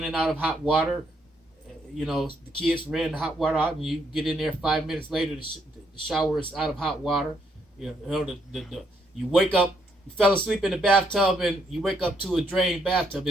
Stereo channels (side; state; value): both; normal; correlation 0.74